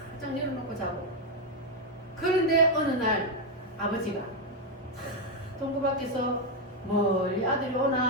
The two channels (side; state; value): both; normal; correlation 0.02